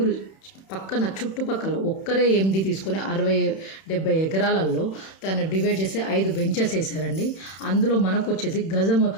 పక్కన చుట్టుపక్కల ఒక్కరే ఎండి తీసుకొని 60-70 ఎకరాలలో దాన్ని డివైడ్ చేసి 5 వెంచర్స్ వేసారండి. అందులో మనకు వచ్చేసి గజము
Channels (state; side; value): late; right; 31 ms